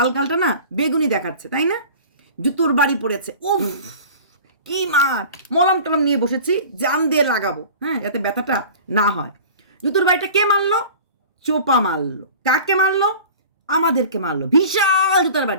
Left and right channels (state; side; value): inverted; both; correlation -0.41